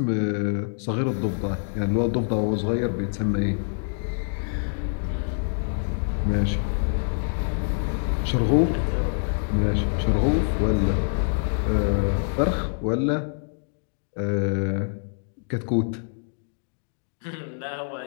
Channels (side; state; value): right; silent; digital silence